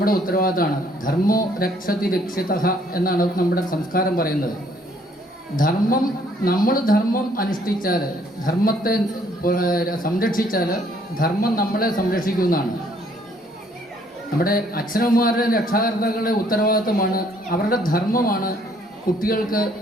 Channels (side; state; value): both; normal; correlation 0.64